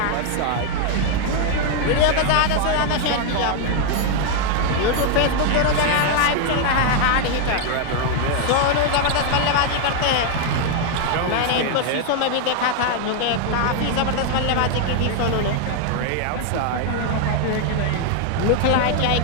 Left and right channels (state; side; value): different; both; correlation 0.00